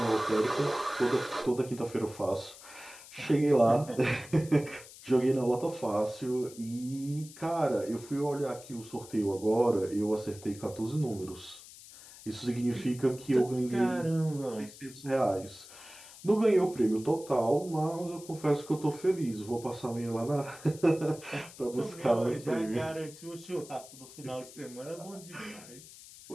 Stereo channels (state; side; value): noise; left; hiss, 18 dB below the sound